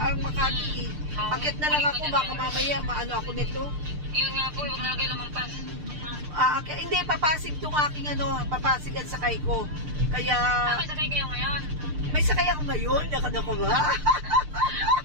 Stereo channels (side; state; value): left; late; 6.7 ms